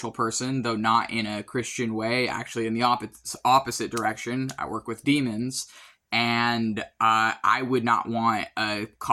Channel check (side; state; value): both; identical; correlation 1.00